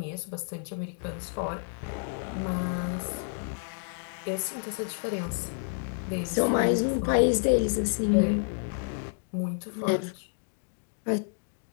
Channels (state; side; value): silent; right; digital silence